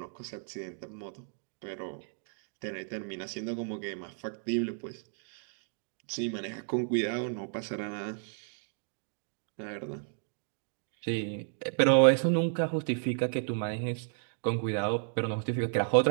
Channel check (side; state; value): left; silent; digital silence